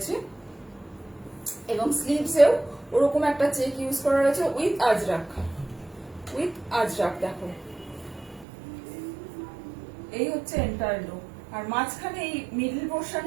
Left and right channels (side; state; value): left; drops out; at 8.5 s